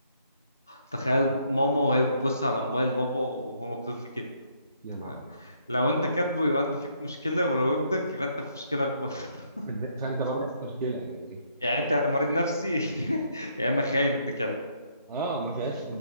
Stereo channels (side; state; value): both; inverted; correlation -0.69